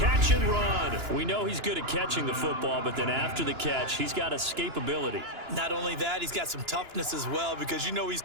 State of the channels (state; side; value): late; left; 2.9 ms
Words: and run. We know he's good at catching the football, but then after the catch, he's got escapability. Not only that, he's got some toughness as well, because you know he's